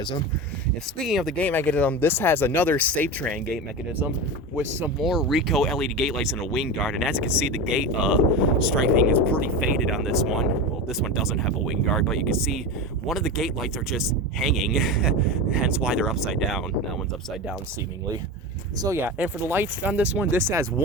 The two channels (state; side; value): normal; both; correlation 0.24